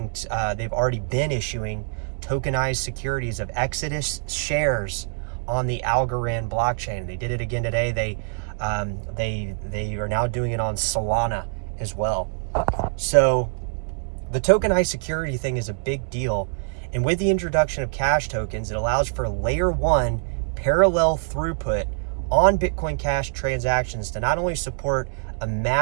they've already been issuing tokenized securities of Exodus shares on the Algorand blockchain. They did it again today. They are now doing it on Solana as well. So the tokenized security thing is a big deal. And with the introduction of cash tokens, it allows for layer 1 parallel throughput on Bitcoin Cash transactions to not only support a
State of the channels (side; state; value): left; silent; digital silence